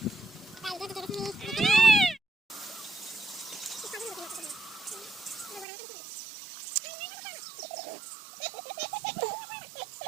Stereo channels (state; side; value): drops out; left; at 5.7 s